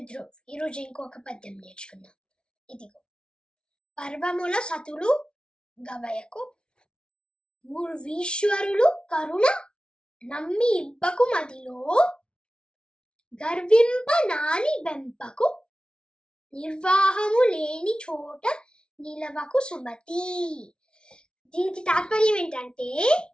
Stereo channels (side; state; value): right; late; 0.056 ms